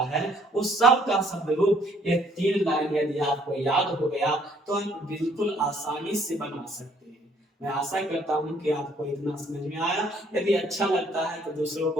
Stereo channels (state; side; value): normal; both; correlation 0.63